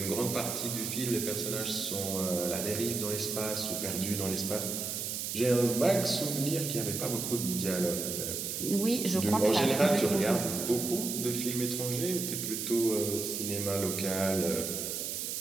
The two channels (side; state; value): right; noise; hiss, 3 dB below the sound